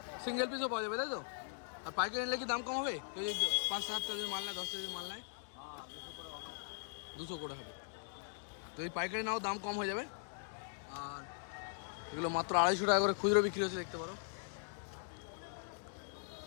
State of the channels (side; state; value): right; silent; digital silence